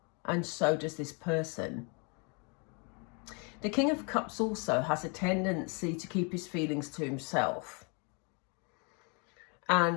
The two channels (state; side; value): quieter; right; 34.5 dB